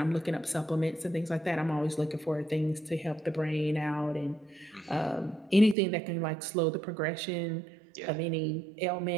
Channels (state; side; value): drops out; left; at 5.8 s